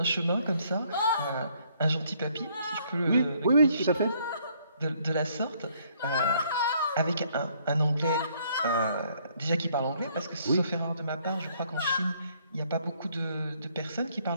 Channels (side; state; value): both; inverted; correlation -0.66